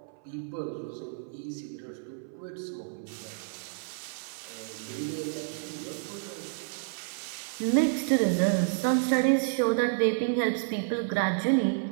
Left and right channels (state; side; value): silent; left; 58 dB below the other